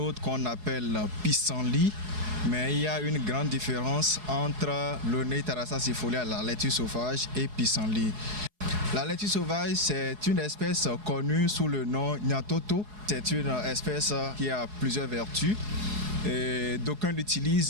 qu'on appelle pissenlit. Mais il y a une grande différence entre Loné-Tarassa-Sifolia, la laitue sauvage, et pissenlit. La laitue sauvage, c'est une espèce connue sous le nom Nyatoto. C'est une espèce qui a plusieurs vertus. Et d'aucuns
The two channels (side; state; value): left; late; 4.7 ms